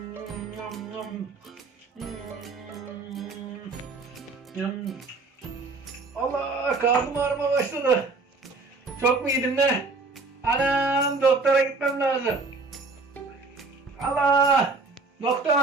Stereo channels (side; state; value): left; quieter; 3.8 dB